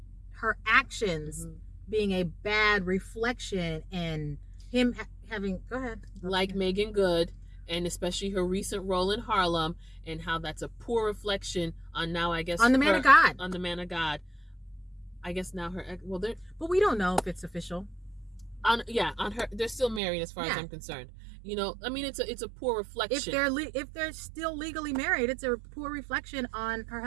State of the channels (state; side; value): drops out; left; at 20.0 s